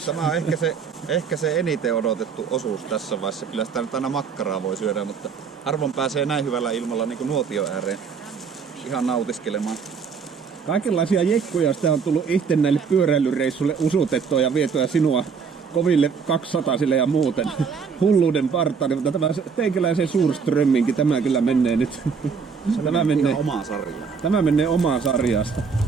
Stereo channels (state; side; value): quieter; left; 6.0 dB